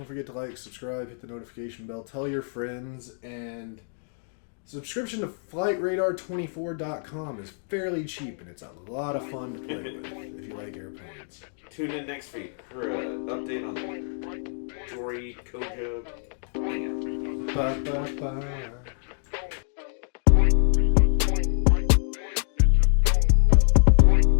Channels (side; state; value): right; silent; 61 dB below the other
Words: forget to like, subscribe, hit the notification bell, tell your friends, and subscription to FlightRadar24.com is fairly cheap, and it's a lot of fun to play with if you like airplanes. Tune in next week for an update on the Jory Koja. Bye, bye, bye.